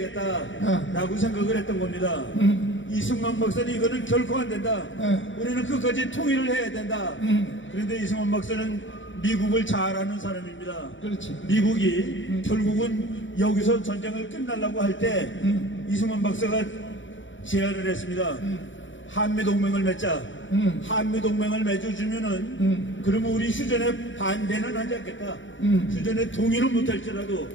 생각을 했던 겁니다. 이승만 박사는 이거는 결코 안 된다. 우리는 끝까지 통일을 해야 된다. 그런데 이승만 박사는 미국을 잘 아는 사람입니다. 그렇지. 미국이 결국은 여기서 전쟁을 끝내려고 할 때 이승만 박사가 제안을 했습니다. 한미동맹을 맺자. 한미동맹을 맺어주면은 그러면 우리 휴전에 반대는 하지 않겠다. 휴전에 동의는 못할지라도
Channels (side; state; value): right; late; 0.55 ms